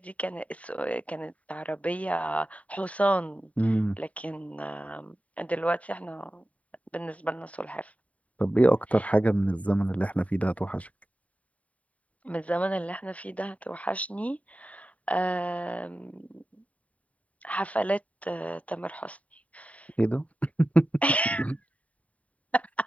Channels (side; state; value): right; late; 0.068 ms